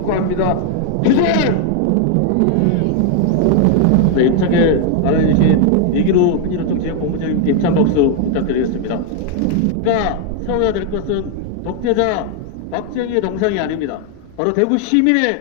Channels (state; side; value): different; both; correlation 0.01